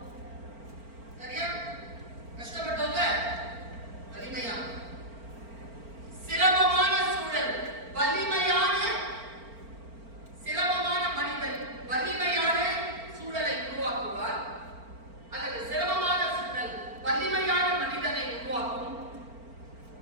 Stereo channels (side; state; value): left; late; 4.4 ms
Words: சரியா? கஷ்டப்பட்டவங்க வலிமையான, சிரமமான சூழல் சிரமமான மனிதன் வலிமையான சூழலை உருவாக்குவார். அல்லது சிரமமான சூழல் வலிமையான மனிதனை உருவாக்கும்.